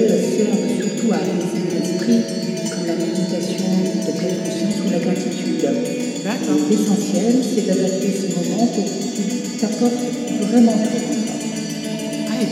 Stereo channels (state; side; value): identical; both; correlation 1.00